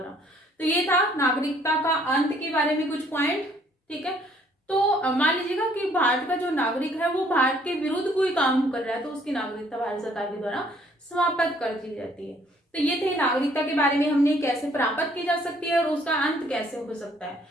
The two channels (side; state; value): both; normal; correlation 0.62